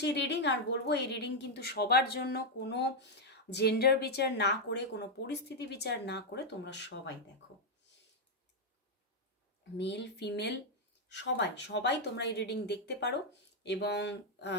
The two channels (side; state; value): both; normal; correlation 0.00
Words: রিডিং। আর বলবো এই রিডিং কিন্তু সবার জন্য, কোনো জেন্ডার বিচার না করে, কোনো পরিস্থিতি বিচার না করে তোমরা সবাই দেখো, মেল ফিমেল সবাই সবাই তোমরা এই রিডিং দেখতে পারো। এবং